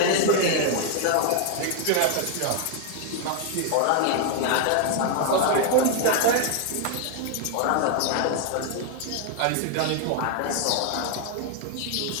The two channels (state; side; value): different; both; correlation 0.00